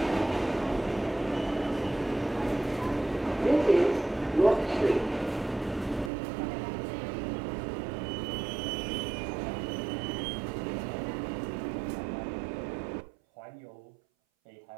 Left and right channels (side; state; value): left; drops out; at 6.1 s